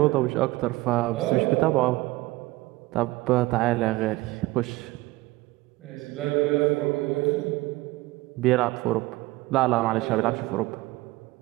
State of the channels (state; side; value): quieter; left; 19.7 dB